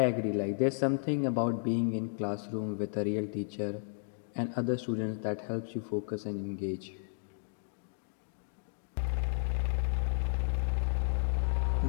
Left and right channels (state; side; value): silent; right; digital silence